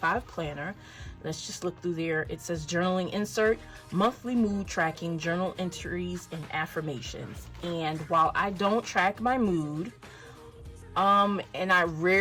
planner. Let's just look through there. It says journaling insert, monthly mood tracking, journal entries, and affirmations. And while I don't track my mood, and I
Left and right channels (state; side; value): identical; both; correlation 1.00